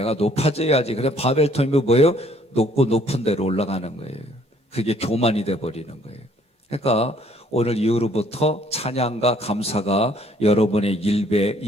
높아져야지. 그래 바벨탑이 뭐예요? 높고 높은 데로 올라가는 거예요. 그게 교만이 돼버리는 거예요. 그러니까 오늘 이후로부터 찬양과 감사가 여러분의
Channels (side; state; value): left; late; 14 ms